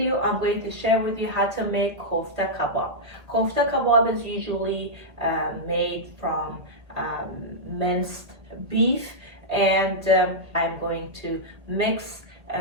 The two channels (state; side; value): late; left; 1.8 ms